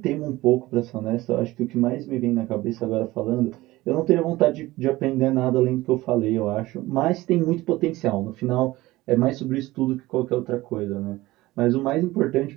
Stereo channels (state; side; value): quieter; left; 18.5 dB